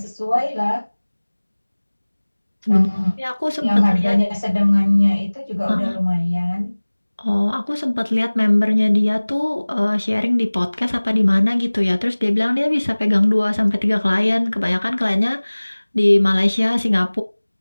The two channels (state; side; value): inverted; both; correlation -1.00